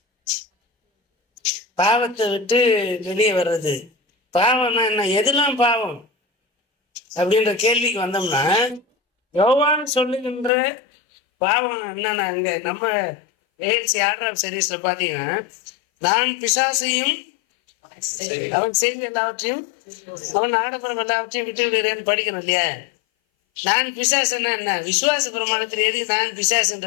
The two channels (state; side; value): drops out; right; at 10.5 s